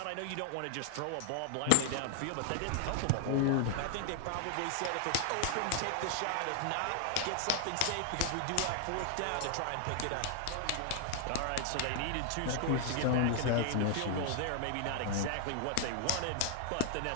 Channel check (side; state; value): both; different; correlation 0.00